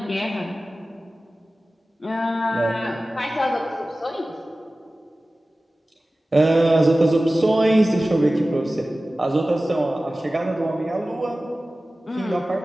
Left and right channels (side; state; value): both; normal; correlation 0.96